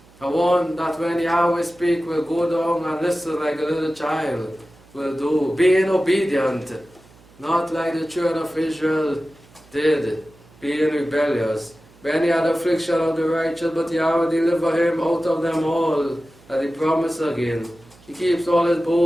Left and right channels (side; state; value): right; noise; hum, 27 dB below the sound